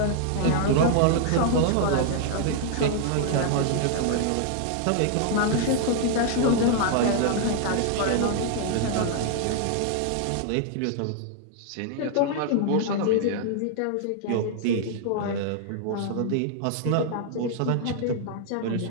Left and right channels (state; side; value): different; both; correlation 0.00